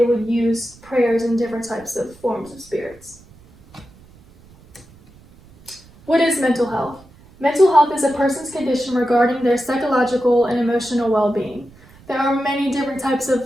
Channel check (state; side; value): noise; right; rumble, 25 dB below the sound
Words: would use prayers and different types of forms of spirits. What is mental health? Mental health is a person's condition regarding their psychological and emotional well-being. There are many different types of